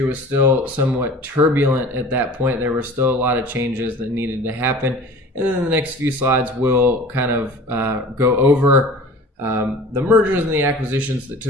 was still somewhat turbulent at that point. There were still a lot of changes that needed to happen. And then in the next few slides, we'll kind of go over the mergers and the acquisitions that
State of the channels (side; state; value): both; normal; correlation 0.42